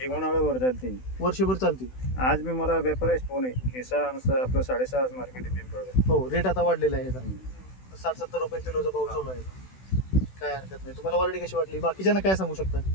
एक उन्हाळ्यावर चालते, वर्षभर चालते. आज मी मला व्यापारीच फोन आहे की आपलं 6.5 मार्केट आहे पिंपळगाव. हो. रेट आता वाढलेला आहे. 60-70 रुपये किलोचा भाव चालू आहे. काय हरकत नाही. तुम्हाला व्हरायटी कशी वाटली? बाकीच्यांना काय सांगू शकता?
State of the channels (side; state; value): right; late; 16 ms